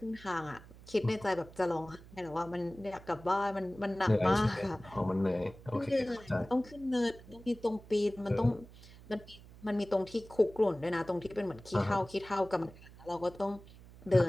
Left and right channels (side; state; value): right; noise; hum, 20 dB below the sound